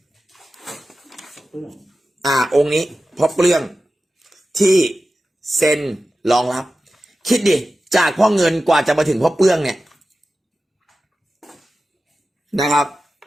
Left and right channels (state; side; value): normal; both; correlation 0.94